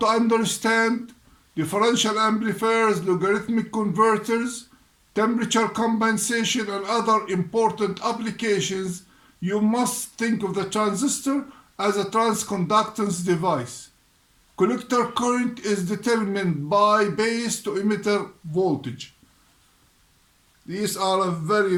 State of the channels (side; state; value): both; identical; correlation 1.00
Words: understand differential amplifiers, logarithmic converters, temperature compensation, and other important applications, you must think of the transistor as a transconductance device. Collector current is determined by base to emitter voltage. These are very,